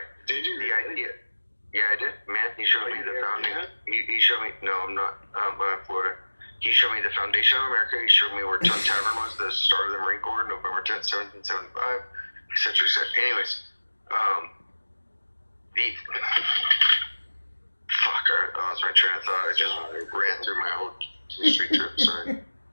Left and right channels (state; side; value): inverted; both; correlation -1.00